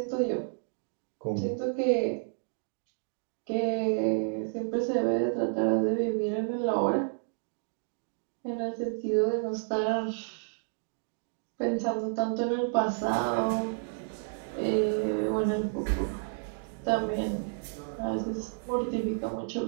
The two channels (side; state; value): left; silent; digital silence